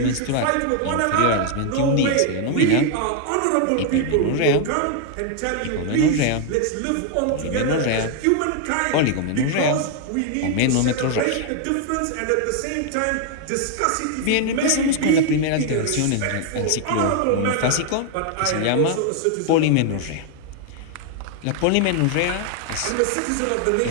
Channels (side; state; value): both; different; correlation 0.00